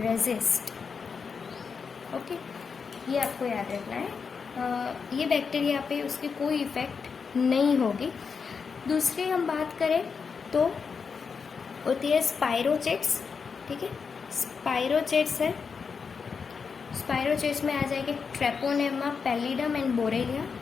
ओके, ये आपको याद रखना है। ये बैक्टीरिया पे उसकी कोई इफेक्ट नहीं होगी। दूसरी हम बात करें तो होती है स्पाइरोचेट्स, ठीक है, स्पाइरोचेट्स है, स्पाइरोचेट्स में आ जाएंगे ट्रेपोनेमा पैलिडम एंड बोरेलिया,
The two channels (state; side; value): quieter; right; 5.7 dB